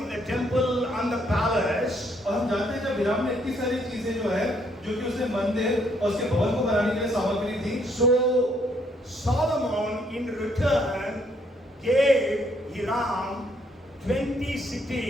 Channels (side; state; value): both; normal; correlation 0.69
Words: the temple and the palace, और हम जानते हैं जब हिराम ने इतनी सारी चीजें जो है जो कि उसने मंदिर और उसके भवन को बनाने के लिए सामग्री दी, so Solomon in return gave Hiram 20